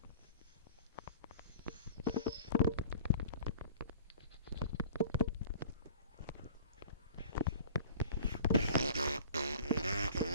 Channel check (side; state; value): both; inverted; correlation -0.43